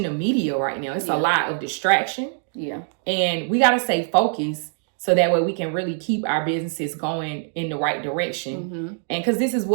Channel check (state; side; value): silent; left; digital silence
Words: the media right now. It's a lot of distraction. Yeah. And we got to stay focused so that way we can really keep our businesses going in the right direction. And because this is